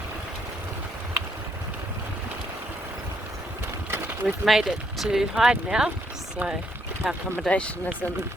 We've made it to Hyde now, so our accommodation is in the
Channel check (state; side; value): normal; both; correlation 0.73